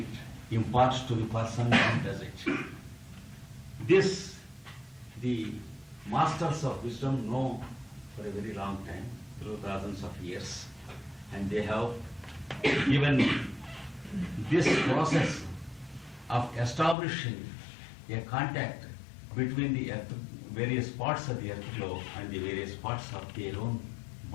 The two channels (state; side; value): drops out; right; at 16.9 s